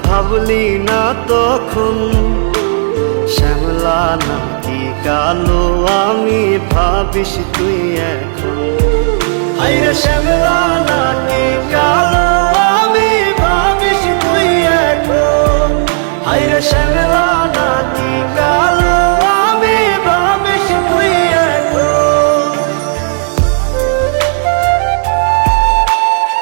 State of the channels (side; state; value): left; silent; digital silence